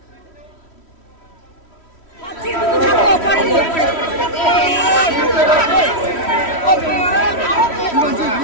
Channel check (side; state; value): right; late; 3.1 ms